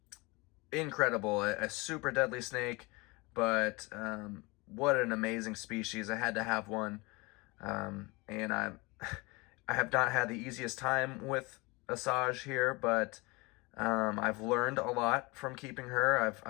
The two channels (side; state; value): right; quieter; 25.6 dB